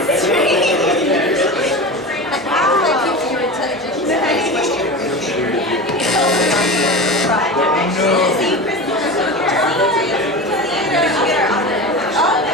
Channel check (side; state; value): both; normal; correlation 0.29